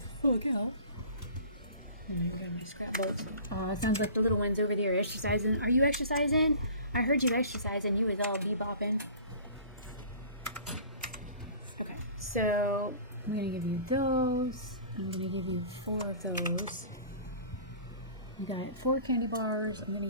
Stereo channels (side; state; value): both; inverted; correlation -0.43